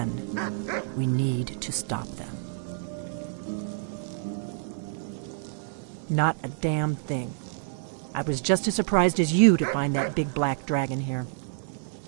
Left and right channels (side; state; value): left; silent; 59 dB below the other